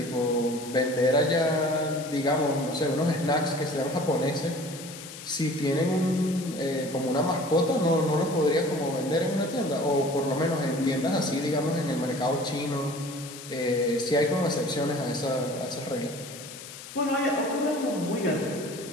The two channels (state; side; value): noise; left; hiss, 14 dB below the sound